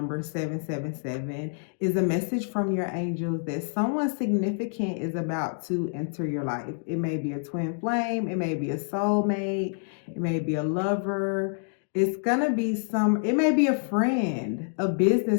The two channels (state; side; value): silent; right; digital silence